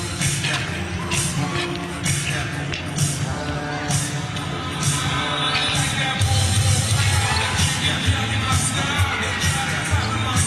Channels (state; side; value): identical; both; correlation 1.00